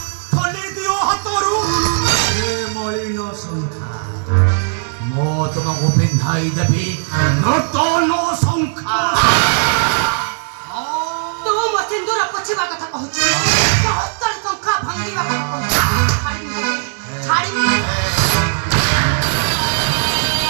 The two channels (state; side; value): silent; left; digital silence